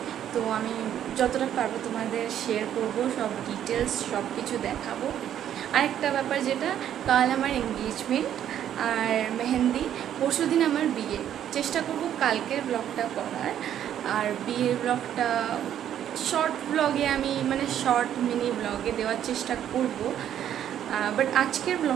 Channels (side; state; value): left; quieter; 10.4 dB